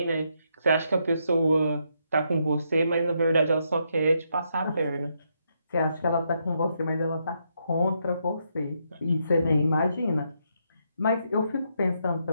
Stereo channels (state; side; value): inverted; both; correlation -0.78